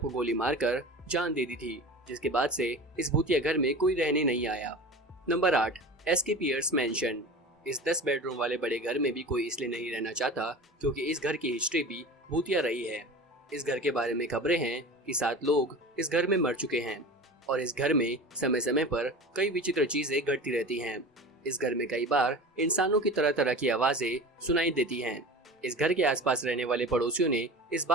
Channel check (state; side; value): normal; both; correlation 0.34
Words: को गोली मारकर जान दे दी थी, जिसके बाद से इस भूतिया घर में कोई रहने नहीं आया। Number 8, SK Pierce mansion. इस 10 बेडरूम वाले बड़े घर में भी कोई इसलिए नहीं रहना चाहता क्योंकि इस घर की हिस्ट्री भी भूतिया रही है। इस घर के बारे में खबरें हैं कि 7 लोग इस घर में मर चुके हैं और इस घर में समय समय पर कई विचित्र चीजें घटती रहती हैं। इस घर में कई बार इंसानों की तरह तरह की आवाजें सुनाई देती हैं। इस घर के आसपास रहने वाले पड़ोसियों ने इस